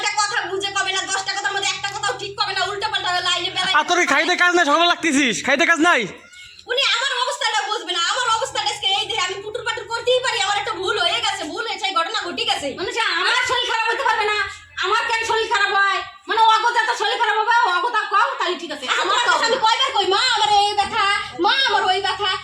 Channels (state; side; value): identical; both; correlation 1.00